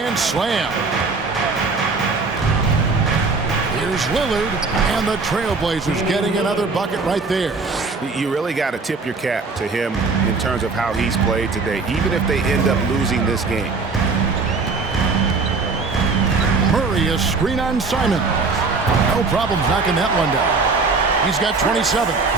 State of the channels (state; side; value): quieter; left; 4.2 dB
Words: slam. Here's Lillard, and the Trailblazers getting another bucket right there. You really got to tip your cap to him in terms of how he's played today, even if they end up losing this game. Murray, a screen on Simon. No problems knocking that one down. He's got 27.